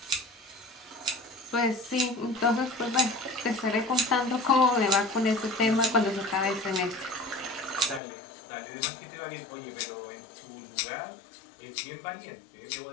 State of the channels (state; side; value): drops out; right; at 8.0 s